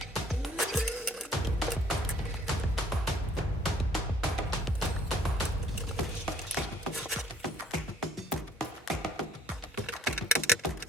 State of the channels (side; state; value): both; normal; correlation 0.59